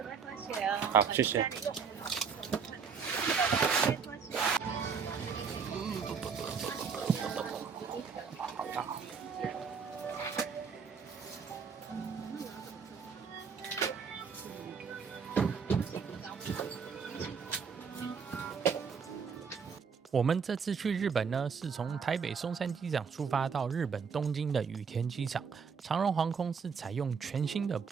好，谢谢。我们这次去日本呢，是从台北松山机场出发到日本东京的羽田机场。长荣航空是采用全新的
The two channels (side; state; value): left; quieter; 6.0 dB